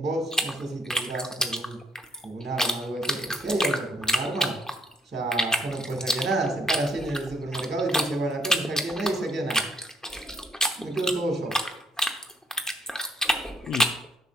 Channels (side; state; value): both; normal; correlation 0.67